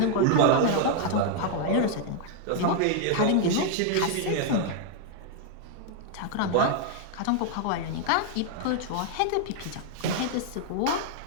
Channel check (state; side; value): different; both; correlation 0.00